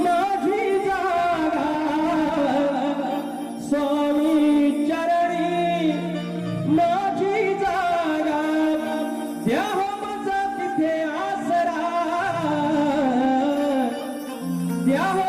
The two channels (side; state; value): both; identical; correlation 1.00